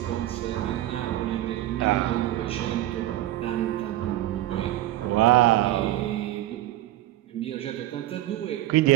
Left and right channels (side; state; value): left; quieter; 15.1 dB